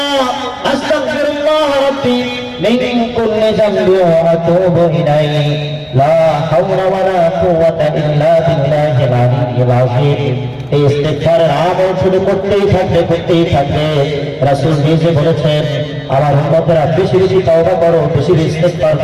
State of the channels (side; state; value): both; identical; correlation 1.00